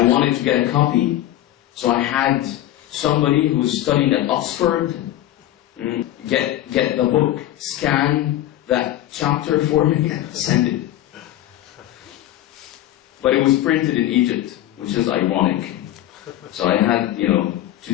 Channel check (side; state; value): right; quieter; 13.6 dB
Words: wanted to get a copy, so I had somebody who was studying at Oxford get the book, scan that chapter for me, and send it. But it was printed in Egypt, which is ironic. So I had, to